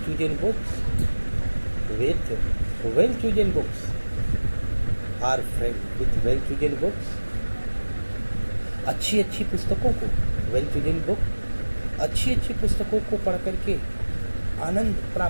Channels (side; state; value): both; inverted; correlation -1.00